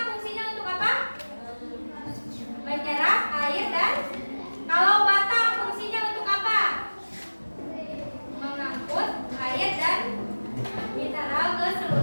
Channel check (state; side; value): inverted; both; correlation -1.00